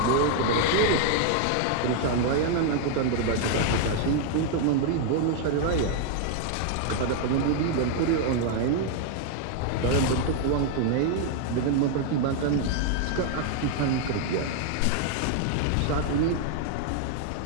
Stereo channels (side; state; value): both; different; correlation 0.00